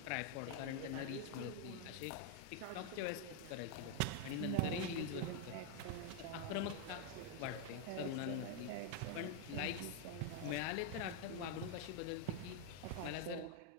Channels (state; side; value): different; both; correlation 0.00